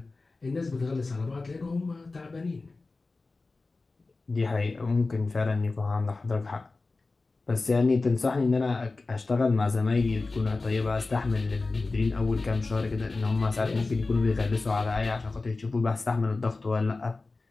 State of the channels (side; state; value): right; quieter; 3.6 dB